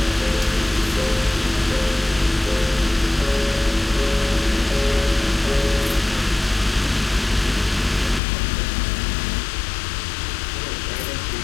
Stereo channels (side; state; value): right; drops out; at 8.2 s